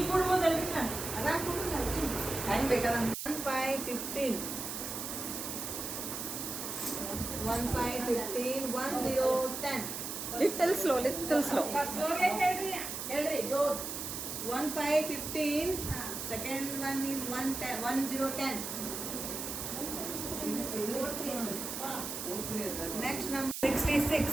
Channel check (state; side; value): noise; right; hiss, 5 dB below the sound